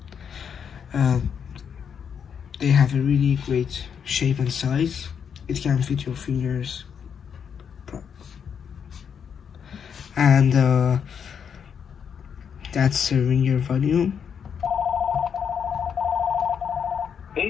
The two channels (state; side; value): quieter; right; 7.4 dB